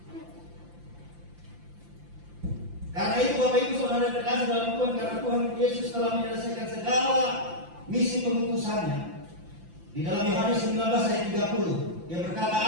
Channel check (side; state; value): left; late; 5.8 ms